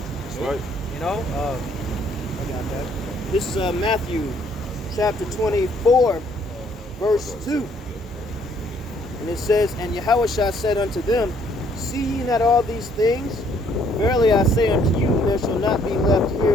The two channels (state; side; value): normal; both; correlation 0.65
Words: That's right. I got that. This is Matthew chapter 24, verse 2. And it says, And Yahawashi said unto them, See ye not all these things? Verily I say unto you, there shall not be left